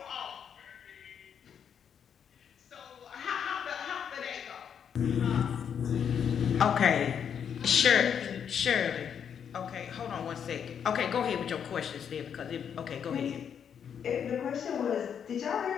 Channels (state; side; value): quieter; right; 7.9 dB